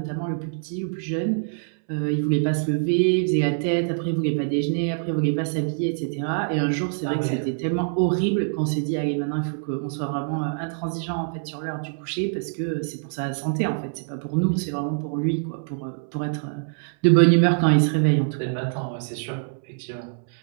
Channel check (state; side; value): silent; left; 62 dB below the other